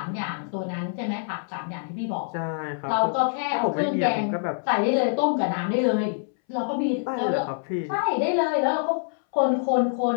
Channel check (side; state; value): right; silent; 61 dB below the other